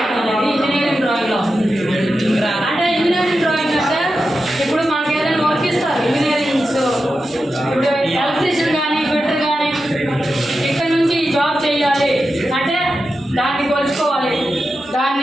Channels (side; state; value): both; normal; correlation 0.90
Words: అనేది ఇంజనీరింగ్ డ్రాయింగ్లో వస్తుంది. అంటే ఇంజనీరింగ్ డ్రాయింగ్ అంటే ఇప్పుడు మనకి ఏదైనా వర్క్ ఇస్తారు ఇంజనీరింగ్స్, ఇప్పుడు ఎలక్ట్రీషియన్ కానీ ఫిటర్ కానీ ఇక్కడ నుంచి ఈ జాబ్ చేయాలి అంటే దాన్ని కొలుచుకోవాలి,